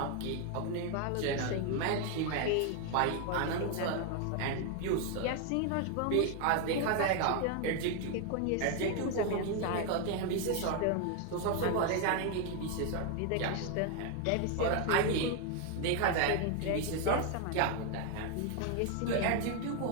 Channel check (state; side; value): different; both; correlation 0.01